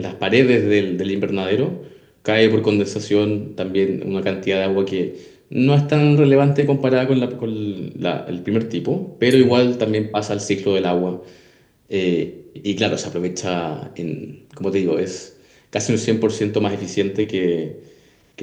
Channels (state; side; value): identical; both; correlation 1.00